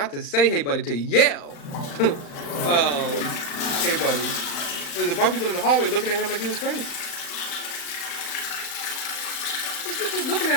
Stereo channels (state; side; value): late; right; 35 ms